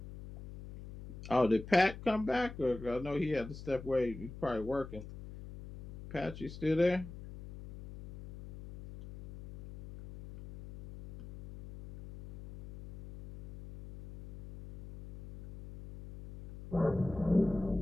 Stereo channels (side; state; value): left; noise; hum, 14 dB below the sound